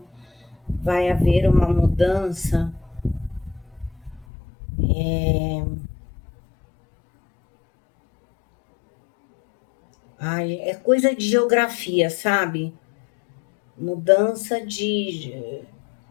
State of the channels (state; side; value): drops out; right; at 4.2 s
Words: Vai haver uma mudança. Ai, é coisa de geografia, sabe? Mudança de.